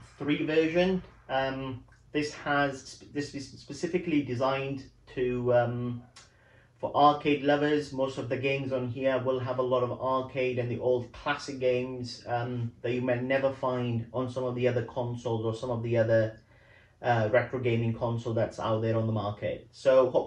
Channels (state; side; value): identical; both; correlation 1.00